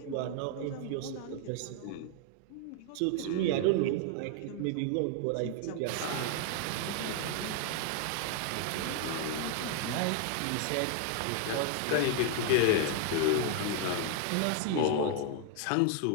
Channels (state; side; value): different; both; correlation 0.00